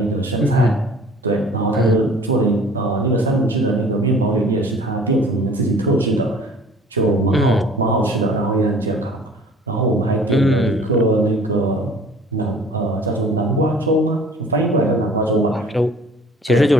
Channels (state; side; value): normal; both; correlation 0.49